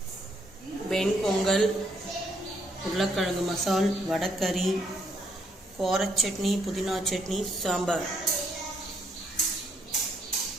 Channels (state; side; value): normal; both; correlation 0.71